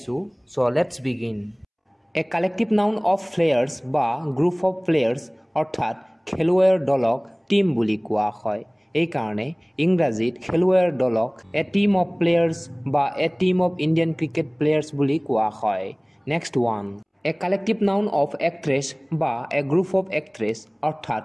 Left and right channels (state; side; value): identical; both; correlation 1.00